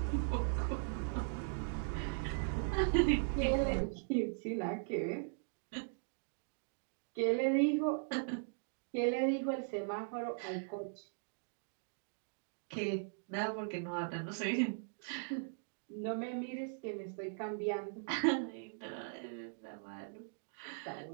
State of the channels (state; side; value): silent; left; digital silence